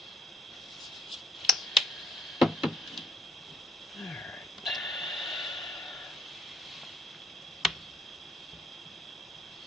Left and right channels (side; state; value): both; normal; correlation 0.66